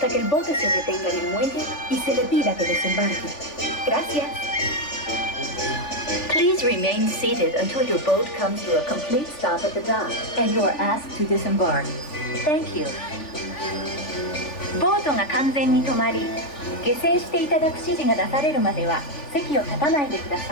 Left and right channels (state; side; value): late; right; 3.4 ms